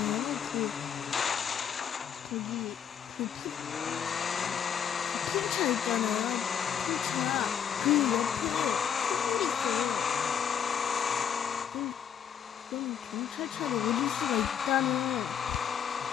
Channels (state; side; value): quieter; right; 8.3 dB